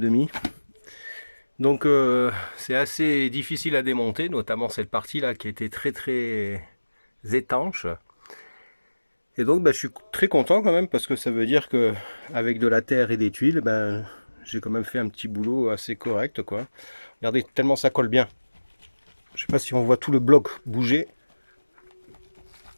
Donc c'est assez difficile à démonter, notamment cette partie là qui était très étanche. Et donc je suis très content quand même parce que ça veut dire que avec de la terre et des tuiles, j'ai quand même fait un petit boulot assez correct, quoi. Regardez, tellement ça colle bien. Je sais pas si on voit tout le bloc bouger.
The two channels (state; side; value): inverted; both; correlation -1.00